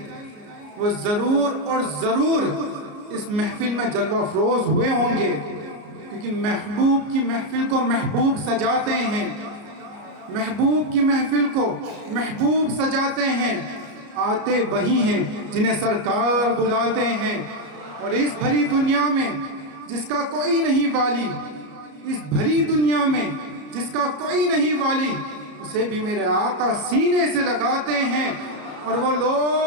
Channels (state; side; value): late; left; 34 ms